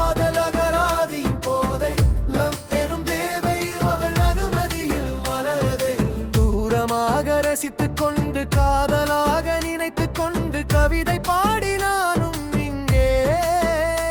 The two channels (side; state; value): both; identical; correlation 1.00